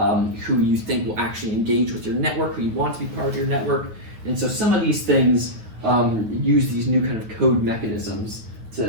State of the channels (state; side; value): late; left; 9.2 ms